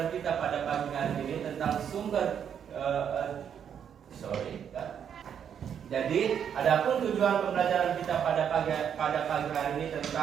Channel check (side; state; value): left; quieter; 8.3 dB